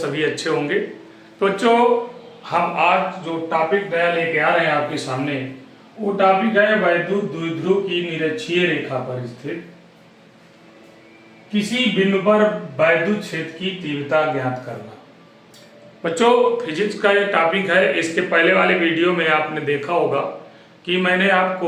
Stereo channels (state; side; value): identical; both; correlation 1.00